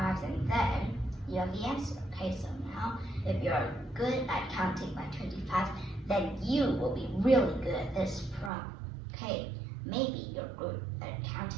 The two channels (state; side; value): drops out; left; at 8.5 s